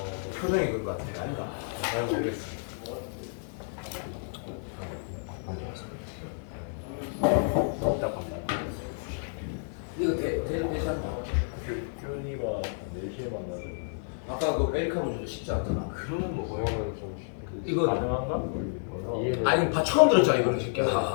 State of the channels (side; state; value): right; silent; 58 dB below the other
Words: 표정이 그런 거 같아. 아닌가? 잘 모르겠어. 이거 되지 않나? 교훈이가 4시에 만나서 아까 그 에리카 문제도 쉽지 않잖아. 그러면 뭐 그러면 좀 이거 가능한가? 이해는 아니 처음 들었잖아 이거는 새끼야.